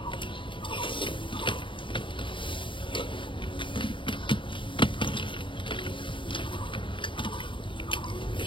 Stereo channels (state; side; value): late; right; 0.24 ms